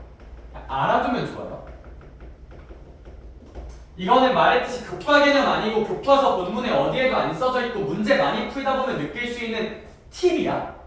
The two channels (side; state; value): both; identical; correlation 1.00